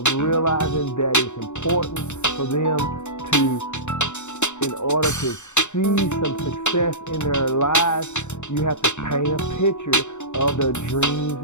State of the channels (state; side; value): late; right; 0.83 ms